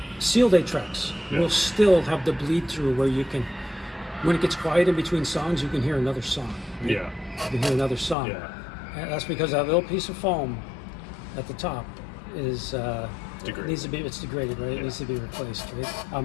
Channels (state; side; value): drops out; right; at 8.2 s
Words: sealed 8-tracks. Yeah. Will still have the bleed through where you can, when it gets quiet in between songs, you can hear another song. Right? Yeah. You can hear another song. Yeah. And that's because that little piece of foam at the top is Degraded. needs to be. It's degraded, right? It Yeah. needs to be replaced, right?